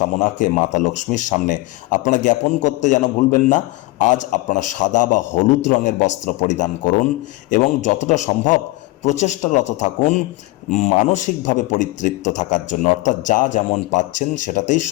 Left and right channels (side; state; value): right; quieter; 20.6 dB